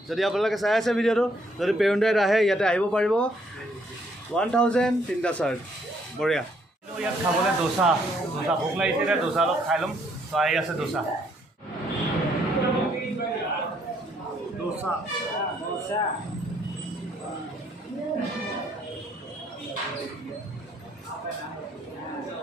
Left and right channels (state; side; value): normal; both; correlation 0.68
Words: যদি আপোনালোকে চাই আছে ভিডিঅ'টো যদি পেৰুণ্ডাইত আহে ইয়াতে আহিব পাৰিব 1000 তিনিটা চাৰ্ট বঢ়িয়া ইয়াত খাবলৈ দোচা ভোক লাগিছে এতিয়া দোচা অলপ খাই ল'ম তো আহি আছে দোচা